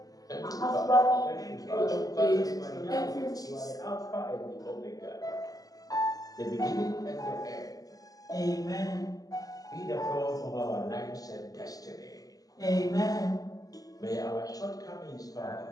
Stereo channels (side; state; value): right; late; 0.17 ms